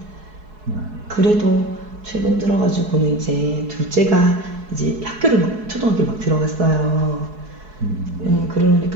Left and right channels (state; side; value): late; left; 4.7 ms